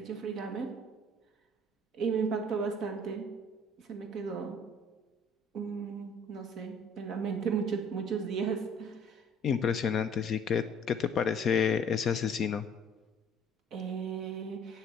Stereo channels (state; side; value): normal; both; correlation 0.54